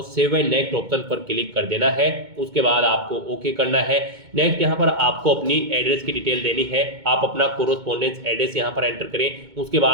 सेव एंड नेक्स्ट ऑप्शन पर क्लिक कर देना है। उसके बाद आपको ओके करना है। नेक्स्ट यहाँ पर आपको अपनी एड्रेस की डिटेल देनी है। आप अपना कोरोस्पोंडेंस एड्रेस यहाँ पर एंटर करें। उसके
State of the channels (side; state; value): left; late; 2.2 ms